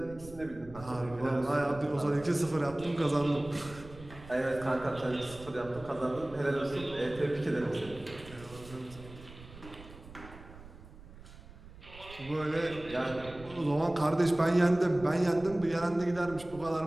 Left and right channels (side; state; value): right; noise; rumble, 17 dB below the sound